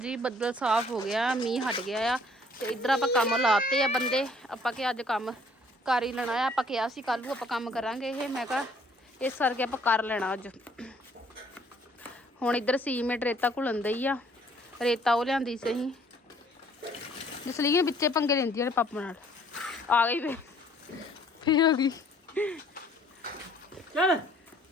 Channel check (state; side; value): normal; both; correlation 0.60